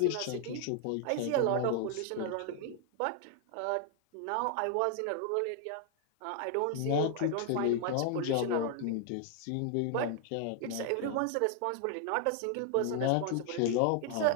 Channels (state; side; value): different; both; correlation 0.00